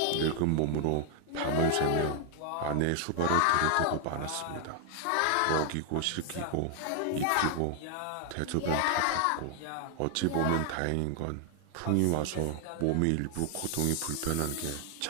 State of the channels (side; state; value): both; different; correlation 0.00